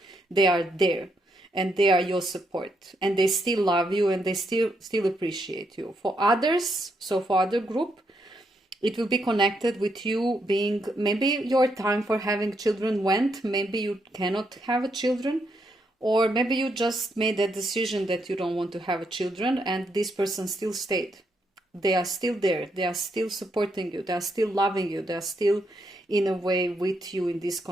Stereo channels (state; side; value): normal; both; correlation 0.78